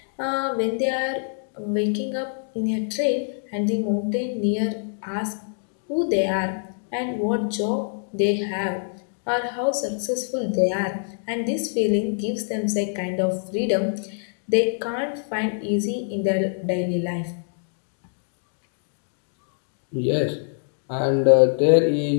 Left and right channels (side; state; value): right; silent; digital silence